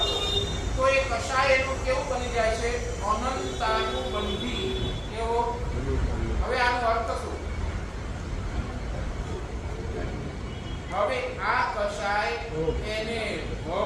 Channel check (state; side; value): identical; both; correlation 1.00